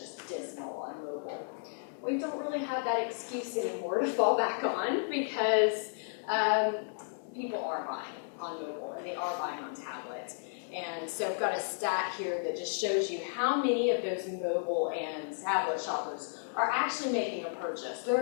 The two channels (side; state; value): right; silent; digital silence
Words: dismal on mobile. We don't really have that excuse anymore to fall back on because people are buying on mobile and they are buying on tablet. And so I've got a stat here that just shows you how many of those mobile and tablet shoppers are actually making a purchase.